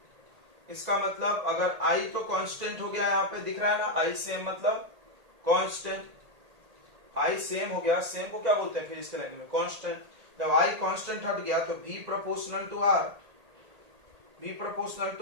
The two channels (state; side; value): late; left; 1.8 ms